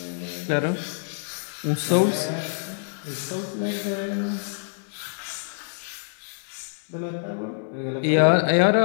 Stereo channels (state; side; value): silent; right; digital silence